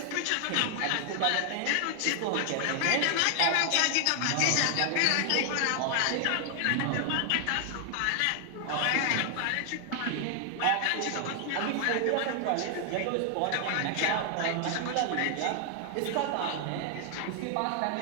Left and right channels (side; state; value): both; different; correlation 0.00